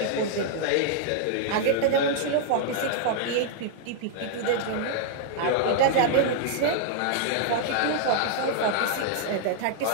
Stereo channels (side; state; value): both; different; correlation -0.01